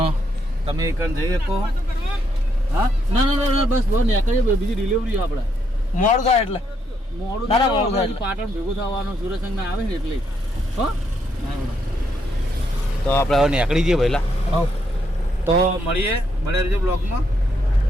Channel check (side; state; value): both; normal; correlation 0.76